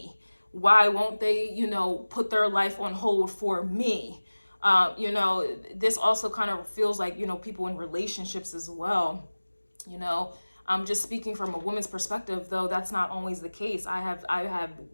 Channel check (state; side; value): inverted; both; correlation -1.00